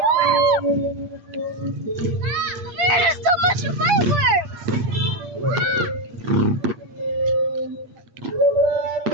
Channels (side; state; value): left; late; 8.6 ms